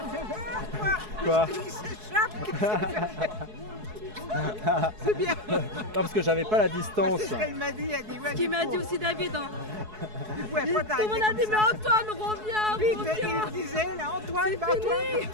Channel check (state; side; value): late; left; 4.7 ms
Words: Quoi? C'est bien. Non, parce que j'avais pas la distance. C'est ce qu'elle m'a dit, elle dit ouais. Ce qu'il m'a dit aussi David. Hein. Du coup, après, Tout le monde a dit, mais Antoine, reviens, Vite, reviens. il disait, là, Antoine, C'est bah, fini.